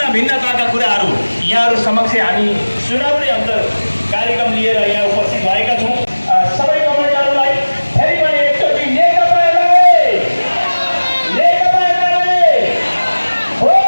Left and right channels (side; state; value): both; inverted; correlation -1.00